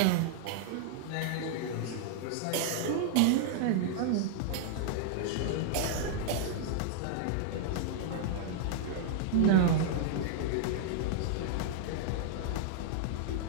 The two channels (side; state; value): both; different; correlation -0.01